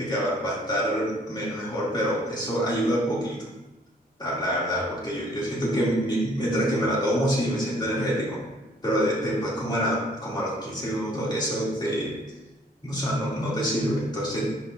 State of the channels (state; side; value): normal; both; correlation 0.59